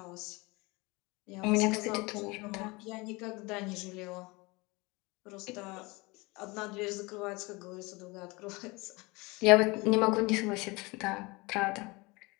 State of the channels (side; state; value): right; quieter; 25.1 dB